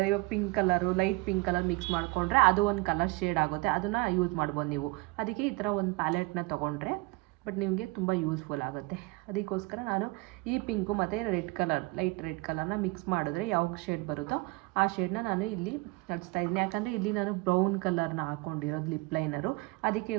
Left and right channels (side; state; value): left; quieter; 23.3 dB